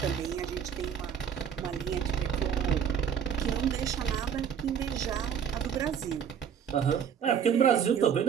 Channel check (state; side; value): quieter; left; 7.9 dB